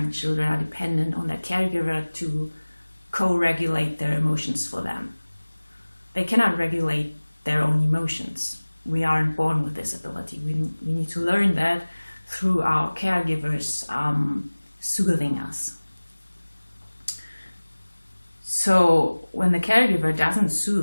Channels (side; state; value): both; inverted; correlation -1.00